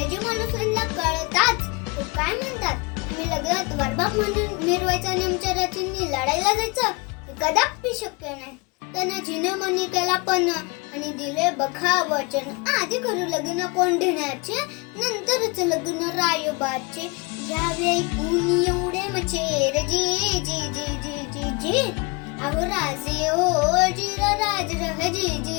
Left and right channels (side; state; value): right; quieter; 28.9 dB